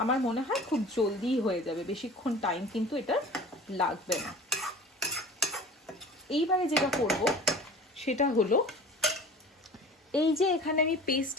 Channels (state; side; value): normal; both; correlation 0.40